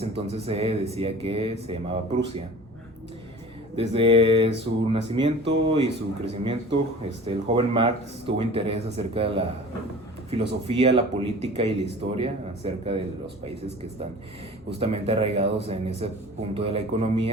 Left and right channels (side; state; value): both; normal; correlation 0.41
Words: entonces se decía que se llamaba Prusia. Desde su nacimiento y su crecimiento, el joven Marx tuvo interés acerca de la filosofía, la política y la historia, acerca de los países que están justamente arraigados en ese punto de la